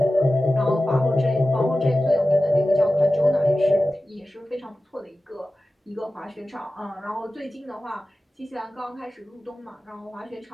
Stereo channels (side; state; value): both; normal; correlation 0.95